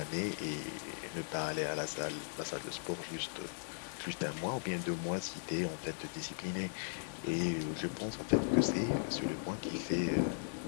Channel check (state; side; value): silent; right; 52 dB below the other